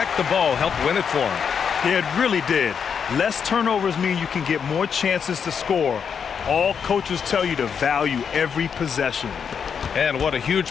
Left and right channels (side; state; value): right; quieter; 6.9 dB